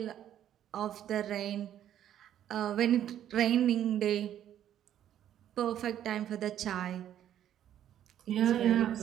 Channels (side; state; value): left; quieter; 10.9 dB